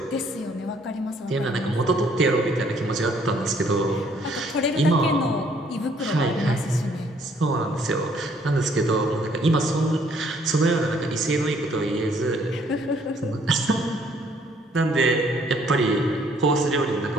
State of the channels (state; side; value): normal; both; correlation 0.64